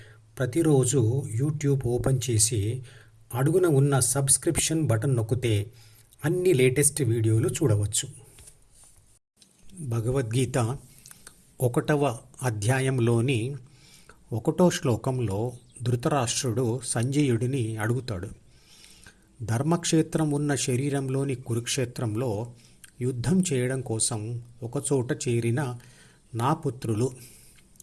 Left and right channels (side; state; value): both; identical; correlation 1.00